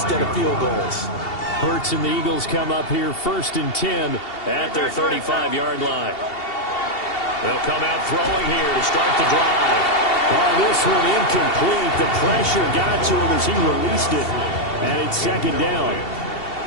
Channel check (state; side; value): late; right; 2.7 ms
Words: of field goals. Hurts and the Eagles come up here first and 10 at their 35-yard line. They'll come out throwing here to start the drive. Oh, this one incomplete. The pressure got to him as he released it. And it's second down.